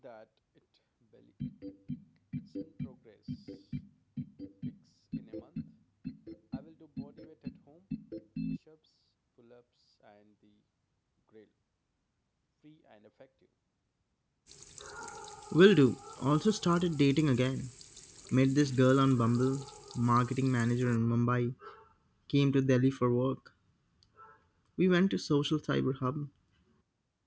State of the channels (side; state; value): both; identical; correlation 1.00